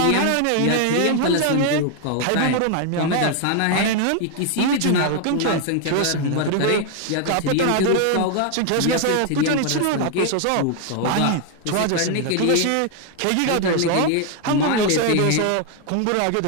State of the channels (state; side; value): different; both; correlation 0.00